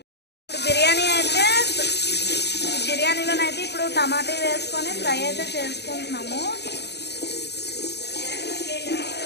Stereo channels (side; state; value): right; late; 0.49 ms